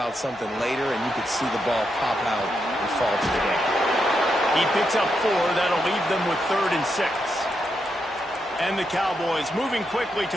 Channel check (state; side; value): normal; both; correlation 0.83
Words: something later, and you could see the ball pop out and fall to the ground. He picks up 4. That'll leave them with 3rd and 6. And the Cowboys moving quickly